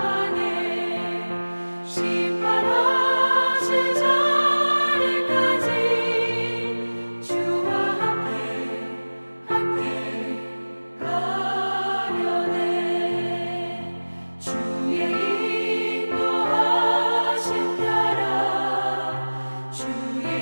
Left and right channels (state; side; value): inverted; both; correlation -1.00